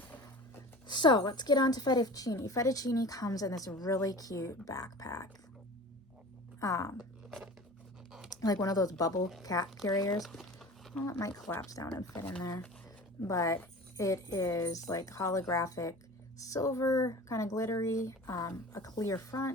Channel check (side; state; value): both; normal; correlation 0.38